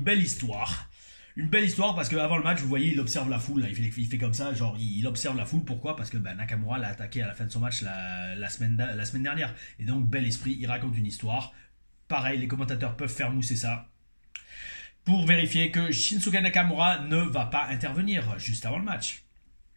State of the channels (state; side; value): inverted; both; correlation -1.00